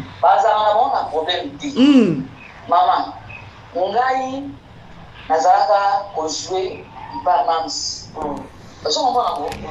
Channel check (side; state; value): both; identical; correlation 1.00